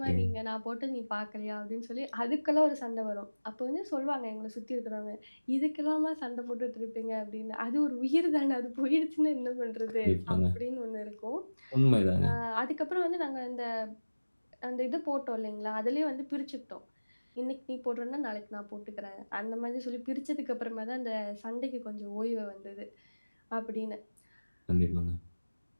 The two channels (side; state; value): both; inverted; correlation -1.00